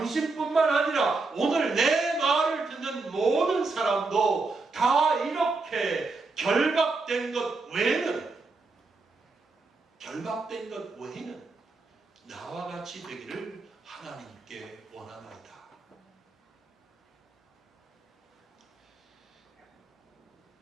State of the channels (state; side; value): quieter; left; 3.8 dB